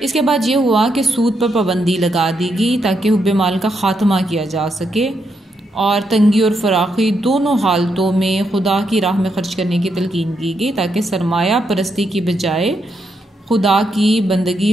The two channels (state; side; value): normal; both; correlation 0.80